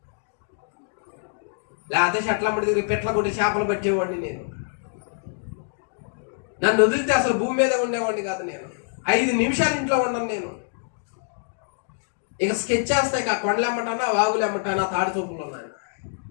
లేకపోతే చెట్లమ్మడి దగ్గర పెట్ల కొట్టి చేపలు పట్టేవాడిని నేను. నన్ను వదిలితే అసలు భూమి మీద ఉండేవాడిని కాదు. నేను 5 నిమిషాలు ఇంట్లో ఉండను. నేను ఇక స్కెచ్ చేస్తాయి. ఇక కొండలు ఎమ్మటానా, వాగులు ఎమ్మటానా, తాడి చూపులు ఉన్నాను.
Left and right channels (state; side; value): silent; right; digital silence